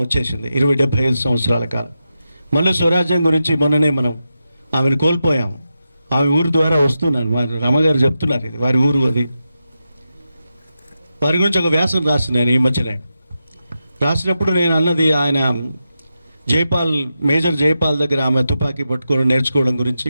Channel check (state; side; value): inverted; both; correlation -0.89